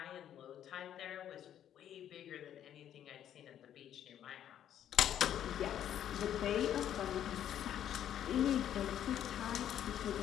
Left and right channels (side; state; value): right; quieter; 10.5 dB